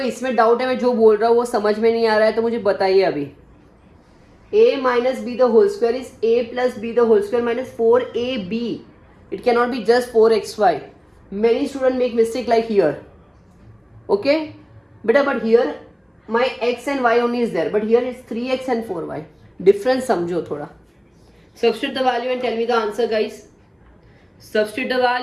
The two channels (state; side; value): identical; both; correlation 1.00